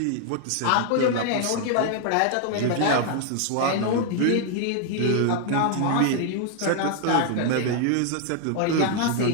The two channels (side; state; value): both; different; correlation 0.00